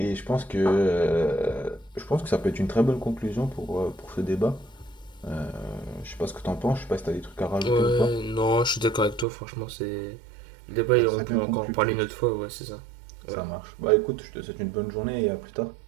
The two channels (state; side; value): drops out; left; at 9.2 s